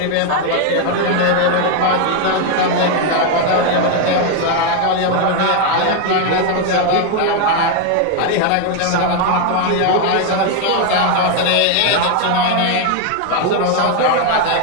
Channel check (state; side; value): different; both; correlation 0.01